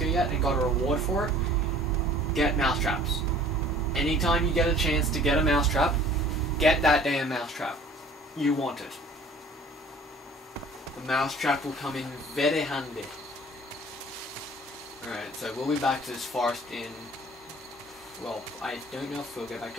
yet and got a reward for it, get mousetraps. Anytime you get a chance to get a mousetrap, get that damn mousetrap. You want it. The mousetrap will come in very handy. Alright, so we'll be back to this forest in... Well, I don't know if we'll get back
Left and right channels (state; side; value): normal; both; correlation 0.50